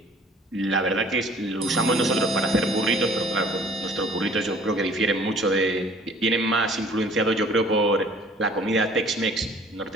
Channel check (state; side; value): normal; both; correlation 0.53